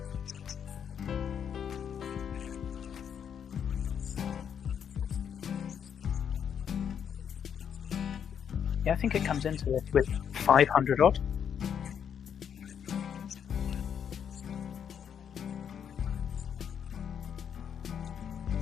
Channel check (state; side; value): quieter; right; 8.1 dB